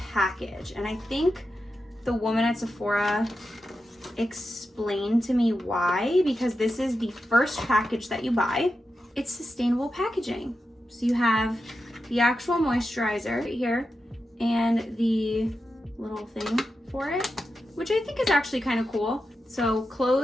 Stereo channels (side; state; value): both; normal; correlation 0.89